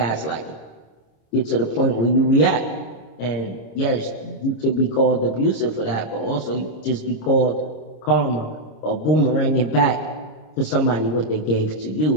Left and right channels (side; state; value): right; late; 26 ms